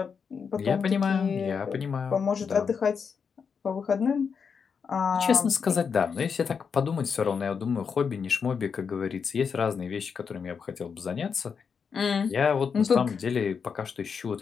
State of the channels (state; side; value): quieter; right; 6.2 dB